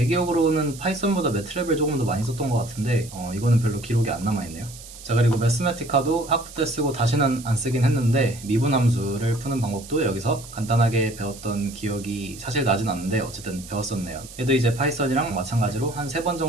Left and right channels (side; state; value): right; noise; hiss, 16 dB below the sound